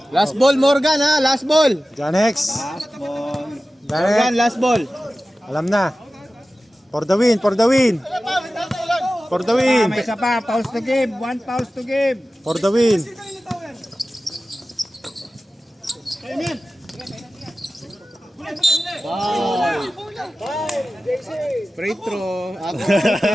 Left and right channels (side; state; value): both; normal; correlation 0.95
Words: Last ball, Morgan ha. Last ball. John X. Last ball. Morgan, last ball. Alam na. For the win. For the win. May isa pa. Pause to game. 1 pause to game. For the win. Free throw.